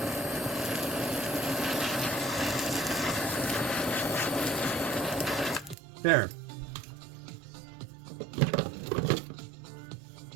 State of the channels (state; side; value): drops out; left; at 5.8 s